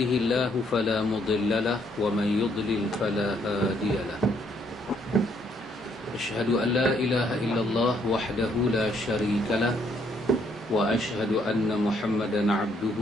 fala mudilla lahu wa man yudlil fala hadiya lahu. أشهد أن لا إله إلا الله وحده لا شريك له وأشهد أن محمدا عبده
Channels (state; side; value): normal; both; correlation 0.69